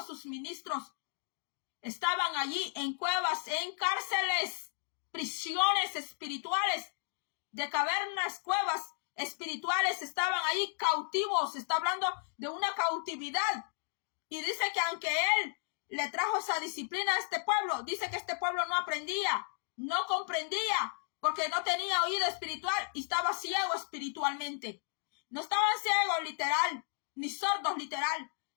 sus ministros, estaban allí en cuevas, en cárceles, prisiones espirituales, de cavernas, cuevas espirituales, estaban allí cautivos. Está hablando de una cautividad. Y dice que aunque él le trajo esa disciplina a este pueblo, dice que este pueblo no aprendía, no comprendía, porque no tenía oído espiritual y estaba ciego espiritualmente. No estaban ciegos literal, ni sordos literal,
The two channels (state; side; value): silent; right; 55 dB below the other